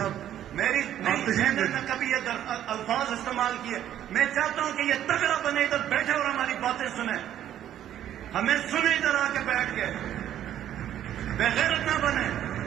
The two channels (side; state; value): left; quieter; 11.2 dB